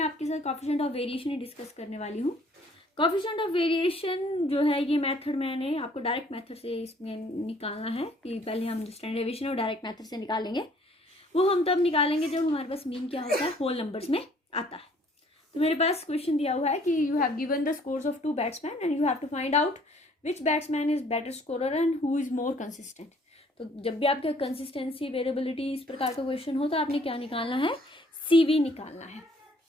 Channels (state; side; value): normal; both; correlation 0.59